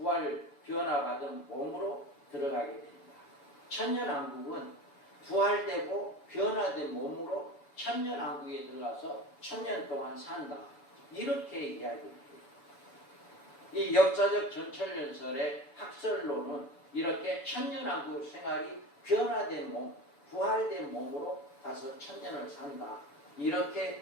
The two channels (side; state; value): right; late; 7.0 ms